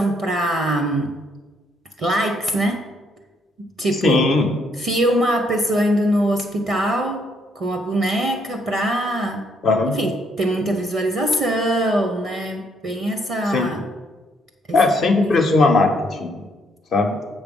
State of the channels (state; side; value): normal; both; correlation 0.70